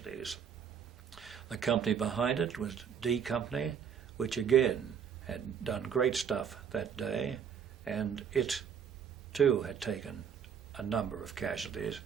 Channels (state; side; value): quieter; left; 7.6 dB